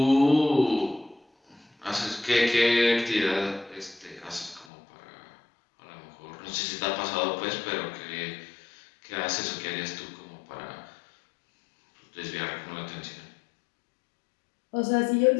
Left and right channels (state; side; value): drops out; right; at 4.7 s